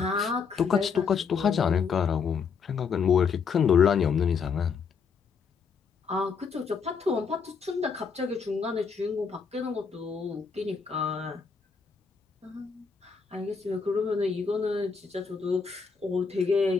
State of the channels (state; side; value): quieter; right; 5.8 dB